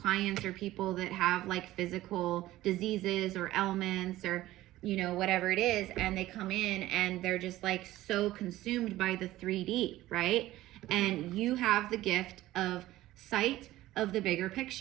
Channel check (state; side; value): quieter; left; 15.9 dB